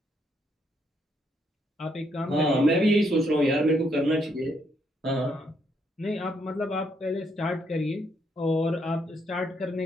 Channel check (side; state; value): both; normal; correlation 0.74